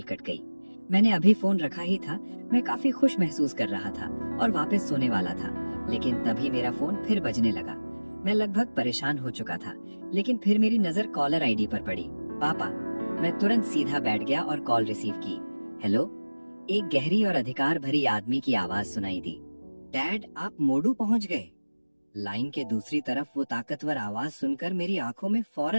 कट गई। मैंने अभी फोन रखा ही था। मैं काफी खुश महसूस कर रहा था और वापस सोने वाला था, लेकिन तभी मेरा फोन फिर बजने लगा। मैं लगभग परेशान हो चुका था, लेकिन फिर मेरी नजर कॉलर आईडी पर पड़ी, पापा। मैं तुरंत सीधा बैठ गया और कॉल रिसीव की। हेलो। एक गहरी और अधिकार भरी आदमी की आवाज सुनाई दी। डैड, आप मोडू पहुंच गए। लाइन के दूसरी तरफ वो ताकतवर आवाज सुनकर मेरी आंखों में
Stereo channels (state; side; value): inverted; both; correlation -1.00